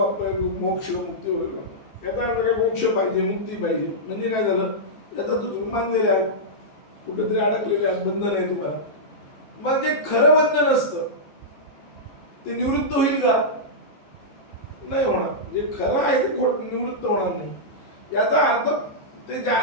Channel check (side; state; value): right; late; 14 ms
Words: मोक्ष मुक्ती वगैरे याचा अर्थ काय मोक्ष पाहिजे मुक्ती पाहिजे म्हणजे काय झालं याचा तुम्ही मानलेले आहात कुठेतरी अडकलेले आहात बंधन आहे तुम्हाला मग जे खरं बंधन असतं ते निवृत्त होईल का नाही होणार जे खरं आहे ते निवृत्त होणार नाही याचा अर्थ ते ज्या